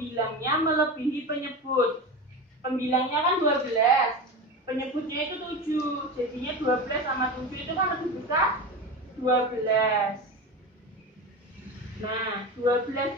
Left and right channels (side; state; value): both; normal; correlation 0.25